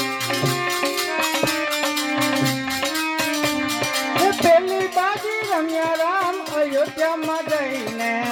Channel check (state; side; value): identical; both; correlation 1.00